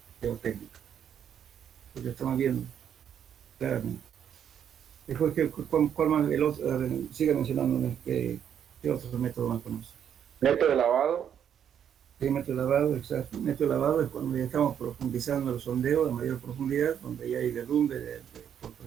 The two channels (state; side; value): quieter; left; 8.9 dB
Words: geotécnico. Pues lo estamos viendo claramente. Después, ¿cuál más? El otro, sigue mencionando qué otro método más conoce. Método de lavado. Sí, método de lavado, exacto. Método de lavado es cuando ya estamos profundizando el sondeo a mayor profundidad, donde ya hay derrumbe por